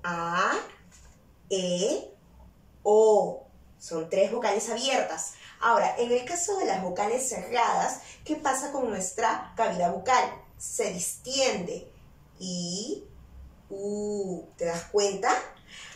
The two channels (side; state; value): both; identical; correlation 1.00